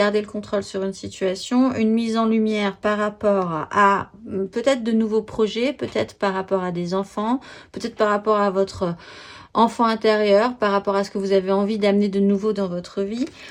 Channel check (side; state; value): both; identical; correlation 1.00